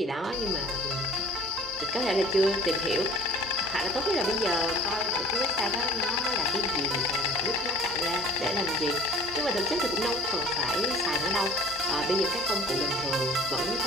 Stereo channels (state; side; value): normal; both; correlation 0.47